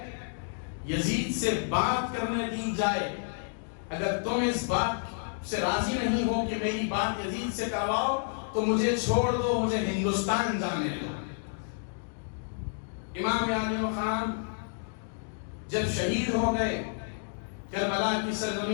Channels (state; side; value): silent; right; digital silence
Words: یزید سے بات کرنے دی جائے۔ اگر تم اس بات سے راضی نہیں ہو کہ میری بات یزید سے کرواؤ تو مجھے چھوڑ دو، مجھے ہندوستان جانے دو۔ امام عالی مقام جب شہید ہو گئے کربلا کی